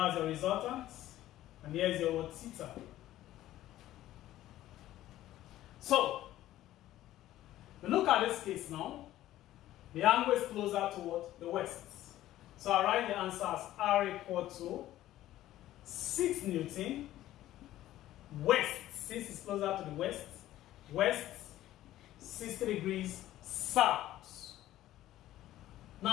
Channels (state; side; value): quieter; right; 14.2 dB